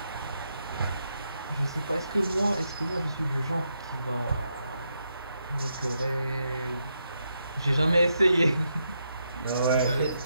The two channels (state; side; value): inverted; both; correlation -0.81